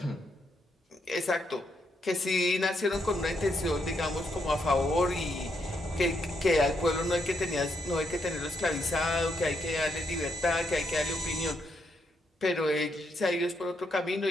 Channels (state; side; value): normal; both; correlation 0.78